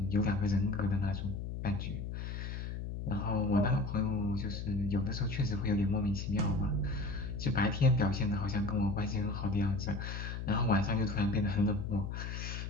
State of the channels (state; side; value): noise; left; hum, 5 dB below the sound